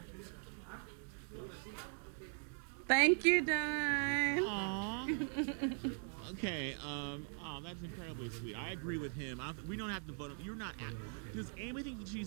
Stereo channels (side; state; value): left; silent; 51 dB below the other